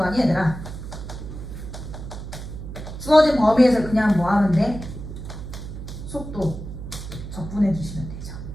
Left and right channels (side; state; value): right; noise; hum, 10 dB below the sound